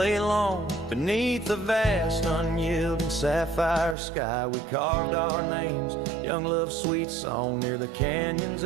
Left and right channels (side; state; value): left; drops out; at 4.0 s